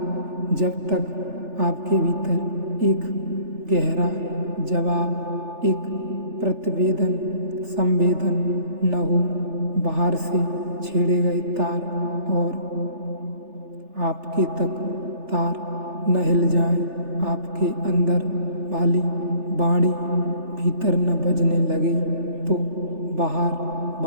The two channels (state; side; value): late; left; 3.4 ms